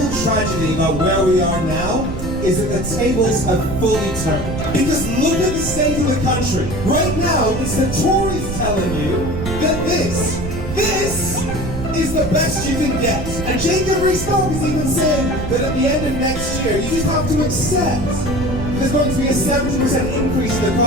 tragedy about where we are now is that the tables have fully turned. Because look at the state of the country. Right now, it's the Tories telling you that this is the best you can get. And Jacob Rees-Mogg is even saying that at the end of next year, you just have to accept there's going to be a 70% increase in the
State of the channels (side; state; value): right; noise; rumble, 7 dB below the sound